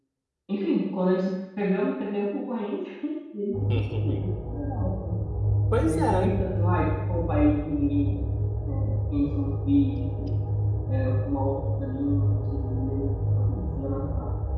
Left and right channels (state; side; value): identical; both; correlation 1.00